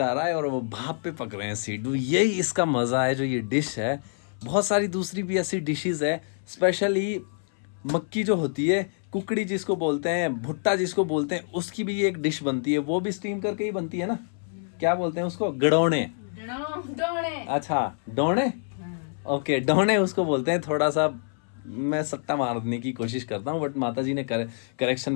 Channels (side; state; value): right; silent; 61 dB below the other